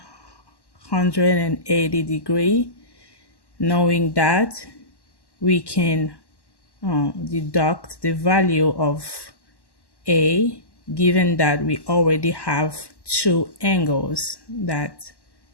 degrees. Knowing that, we can deduct the value of A, given that we already have two angles that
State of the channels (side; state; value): right; late; 1.1 ms